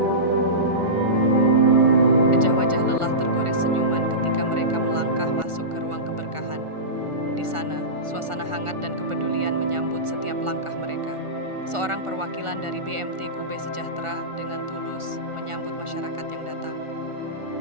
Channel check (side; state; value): left; late; 1.4 ms